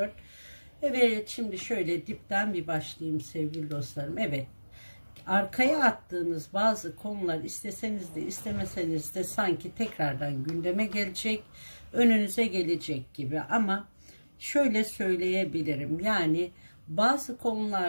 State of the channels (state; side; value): inverted; both; correlation -1.00